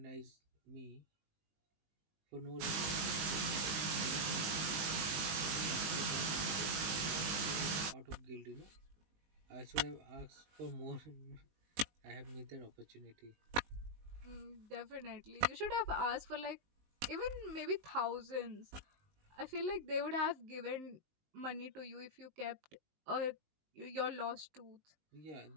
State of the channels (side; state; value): left; late; 19 ms